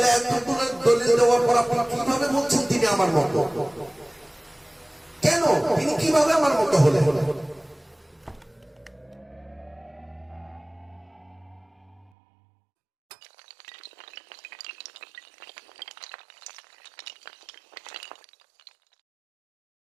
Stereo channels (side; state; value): left; drops out; at 12.1 s